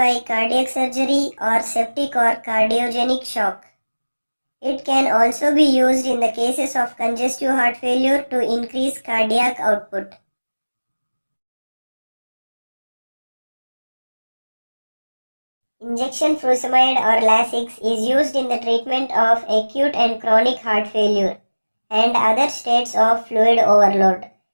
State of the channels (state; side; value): inverted; both; correlation -1.00